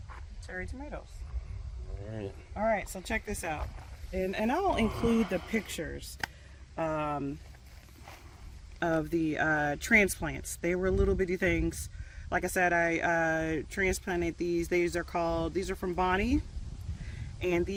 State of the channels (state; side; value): identical; both; correlation 1.00